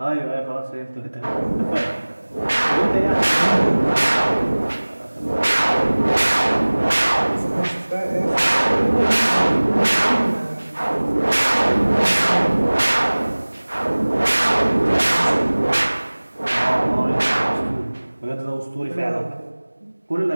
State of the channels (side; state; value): both; inverted; correlation -1.00